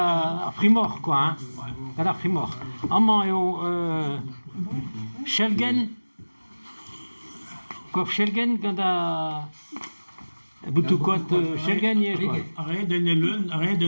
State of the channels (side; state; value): both; inverted; correlation -1.00